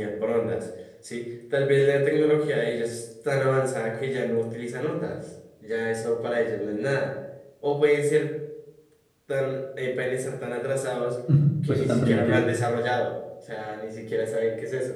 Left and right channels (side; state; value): both; identical; correlation 1.00